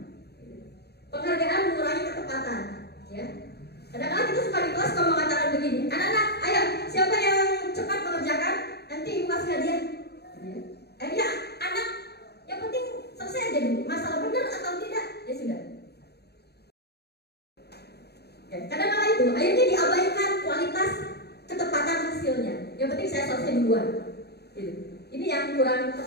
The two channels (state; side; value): late; right; 0.48 ms